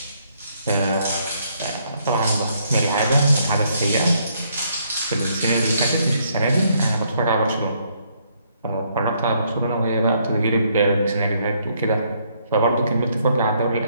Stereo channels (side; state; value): both; inverted; correlation -0.71